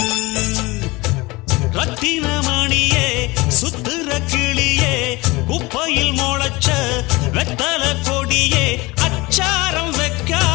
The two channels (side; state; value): right; quieter; 22.7 dB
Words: ரத்தினமணியே சுத்துற கிளியே குப்பையில் முளைச்ச வெத்தல கொடியே அச்சாரம்